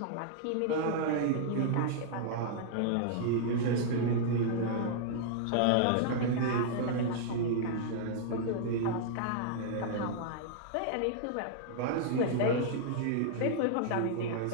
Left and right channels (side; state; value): both; different; correlation -0.01